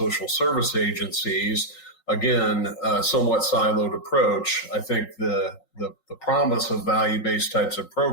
service agencies. Again, a somewhat siloed approach. I think the promise of value-based types of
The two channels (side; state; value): right; late; 3.9 ms